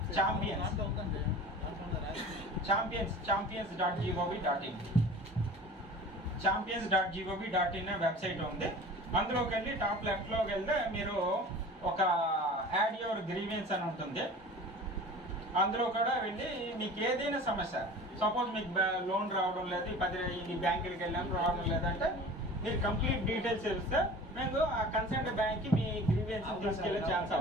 champions.gov.in champions.gov.in వెబ్సైట్ ఉంది. అందులోకి వెళ్ళి టాప్ లెఫ్ట్లోకి వెళ్తే మీరు ఒక యాడ్ యువర్ గ్రీవియన్స్ అని ఉంటుంది. అందులో కూడా వెళ్ళి మీకు ఏదైనా సమస్య, సపోజ్ మీకు లోన్ రావడం లేదు, 10 బ్యాంకులకి వెళ్ళాను రావడం లేదంటే మీరు కంప్లీట్ డీటెయిల్స్ ఇస్తే మీకు ఆ కన్సర్న్ బ్యాంక్కి మీ గ్రీవియన్స్ తీసుకెళ్ళే ఛాన్స్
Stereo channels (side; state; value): both; normal; correlation 0.40